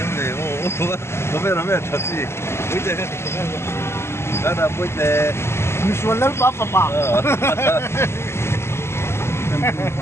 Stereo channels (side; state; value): right; late; 0.12 ms